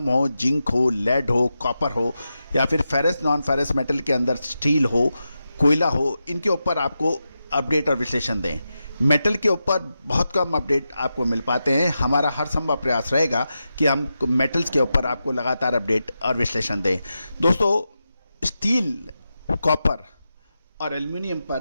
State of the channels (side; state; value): both; inverted; correlation -0.89